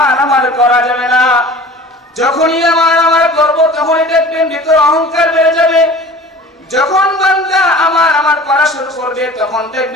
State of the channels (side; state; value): both; normal; correlation 0.41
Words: আমার করা যাবে না। যখনই আমার করব, তখনই দেখবেন ভিতর অহংকার বেড়ে যাবে। যখন বান্দা আমার করা শুরু করবে, তখন